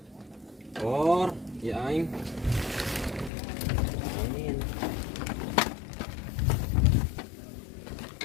Or, ya aing. Angin.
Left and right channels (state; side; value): drops out; right; at 3.3 s